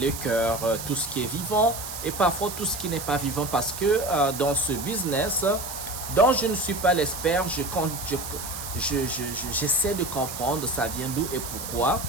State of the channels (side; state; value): right; noise; hiss, 8 dB below the sound